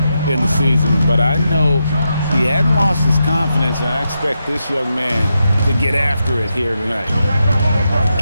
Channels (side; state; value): both; inverted; correlation -0.86